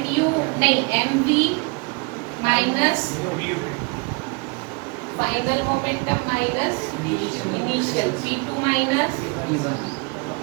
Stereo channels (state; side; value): quieter; left; 30.3 dB